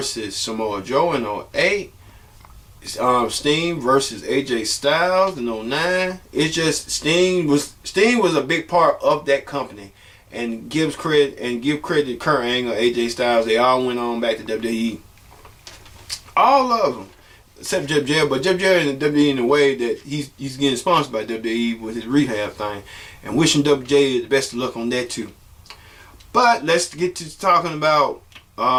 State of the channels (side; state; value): both; identical; correlation 1.00